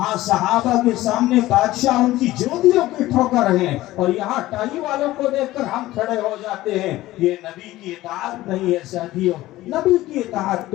صحابہ کے سامنے بادشاہ ان کی جوتیوں کی ٹھوکر ہیں اور یہاں ٹائی والوں کو دیکھ کر ہم کھڑے ہو جاتے ہیں۔ یہ نبی کی اطاعت نہیں ہے ساتھیوں، نبی کی اطاعت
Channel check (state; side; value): quieter; right; 16.6 dB